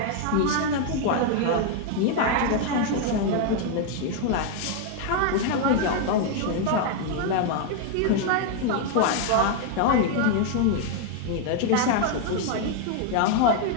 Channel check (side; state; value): both; different; correlation 0.00